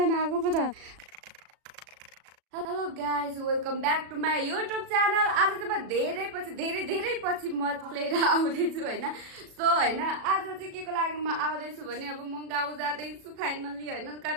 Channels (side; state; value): left; late; 37 ms